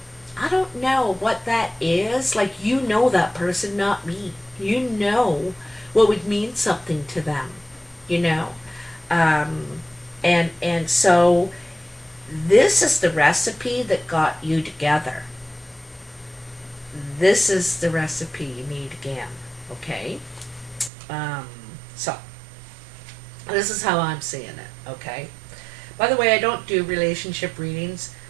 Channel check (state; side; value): drops out; left; at 20.9 s